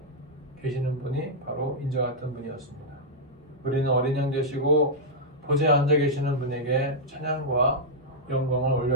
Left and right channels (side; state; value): both; normal; correlation -0.06